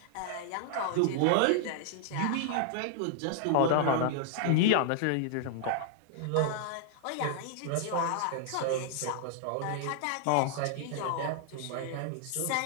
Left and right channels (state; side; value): different; both; correlation 0.00